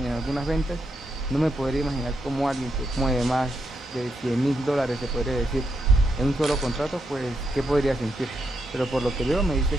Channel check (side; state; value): both; normal; correlation 0.82